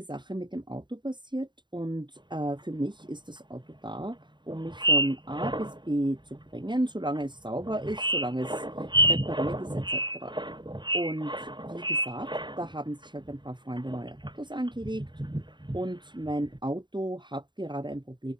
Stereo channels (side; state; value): left; late; 0.22 ms